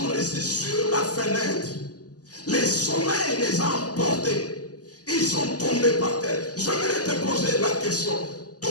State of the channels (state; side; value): late; right; 0.67 ms